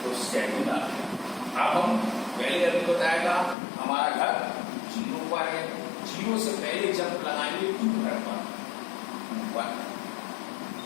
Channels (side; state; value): right; drops out; at 3.6 s